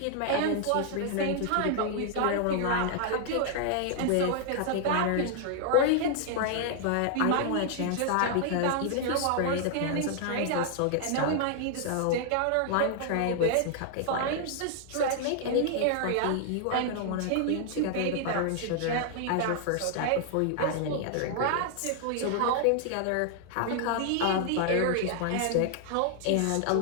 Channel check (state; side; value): different; both; correlation 0.00